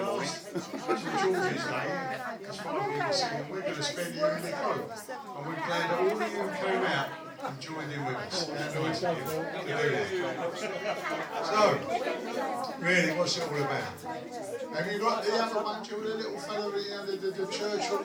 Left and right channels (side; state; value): both; identical; correlation 1.00